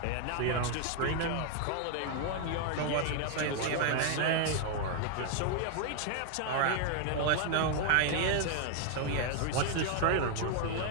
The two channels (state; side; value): different; both; correlation 0.00